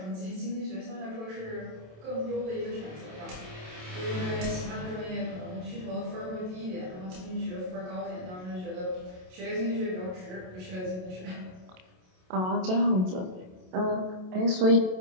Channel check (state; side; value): late; left; 27 ms